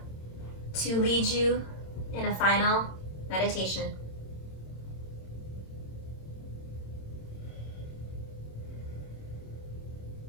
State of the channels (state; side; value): late; right; 26 ms